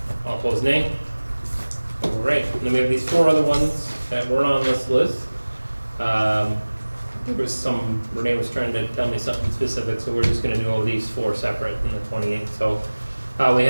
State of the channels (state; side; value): inverted; both; correlation -1.00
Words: All opposed, nay. All right, and then we have these 4 other ones that weren't on this list. There was some, Renee was trying to tell me something specific, so we're just gonna do all these 4 separate in the 28. So, we